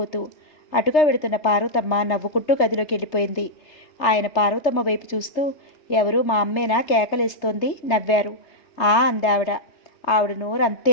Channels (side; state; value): right; late; 3.3 ms